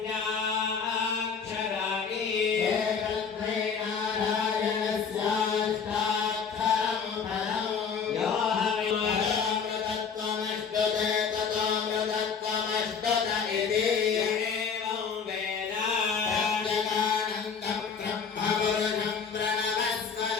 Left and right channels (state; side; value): quieter; right; 6.2 dB